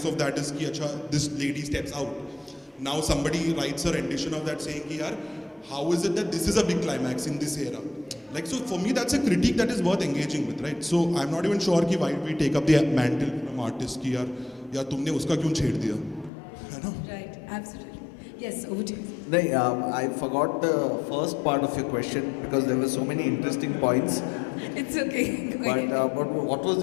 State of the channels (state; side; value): drops out; right; at 16.3 s